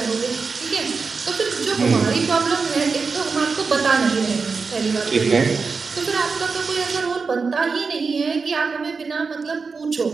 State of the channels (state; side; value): quieter; left; 4.8 dB